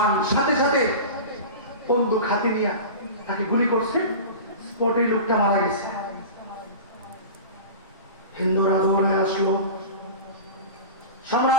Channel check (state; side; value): inverted; both; correlation -0.31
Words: সাথে সাথে বন্দুক হাতে নিয়ে তাকে গুলি করছে, স্পটে লোকটা মারা গেছে। হিন্দুরা দৌড়ে আসলো,